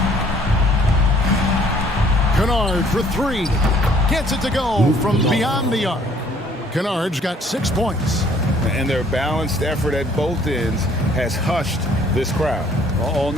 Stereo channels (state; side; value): normal; both; correlation 0.59